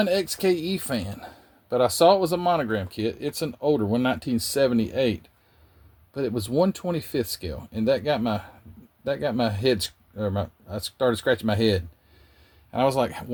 XKE fan, but I saw it was a Monogram kit. It's an older one, 1978, but it was 1/25th scale, and that got my head, I started scratching my head. And I was like,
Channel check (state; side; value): identical; both; correlation 1.00